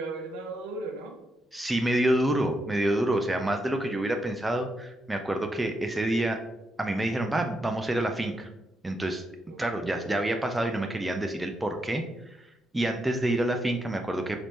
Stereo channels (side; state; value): both; normal; correlation 0.82